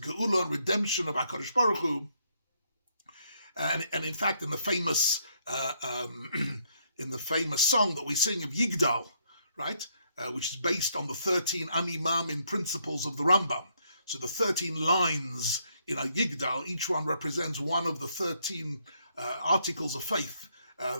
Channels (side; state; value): both; inverted; correlation -0.73